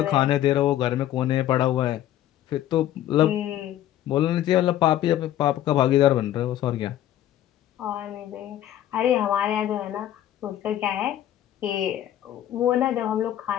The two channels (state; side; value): quieter; right; 12.4 dB